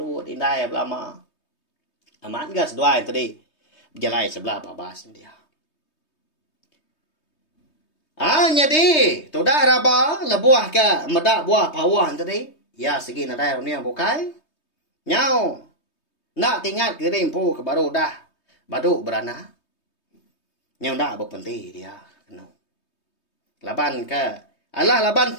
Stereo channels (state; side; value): late; right; 3.2 ms